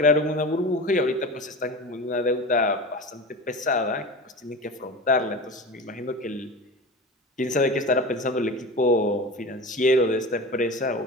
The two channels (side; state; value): both; normal; correlation 0.31